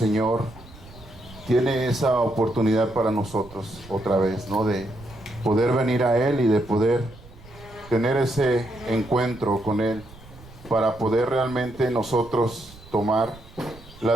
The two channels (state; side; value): noise; right; rumble, 20 dB below the sound